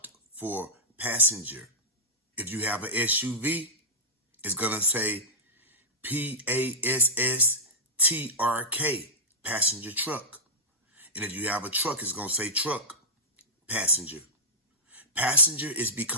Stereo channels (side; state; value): both; normal; correlation -0.11